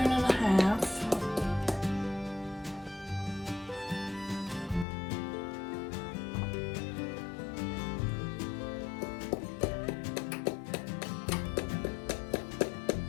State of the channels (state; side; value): drops out; right; at 4.9 s